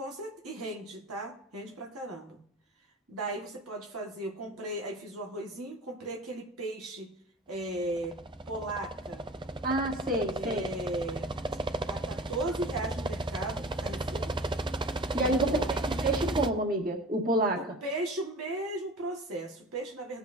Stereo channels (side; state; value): both; normal; correlation 0.38